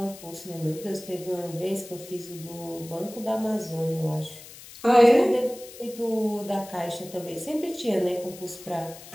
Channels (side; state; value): left; noise; hiss, 17 dB below the sound